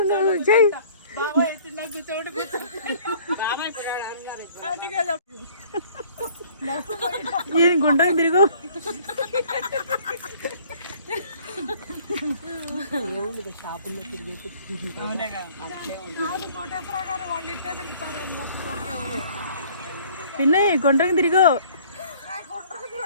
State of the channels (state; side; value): inverted; both; correlation -0.54